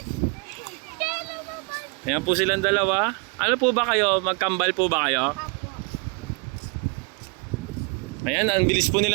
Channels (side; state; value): left; quieter; 33.3 dB